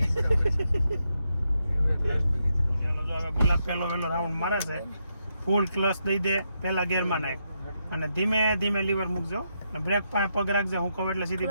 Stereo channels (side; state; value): both; inverted; correlation -0.82